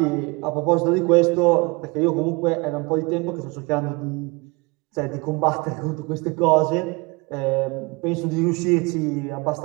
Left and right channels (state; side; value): quieter; left; 26.7 dB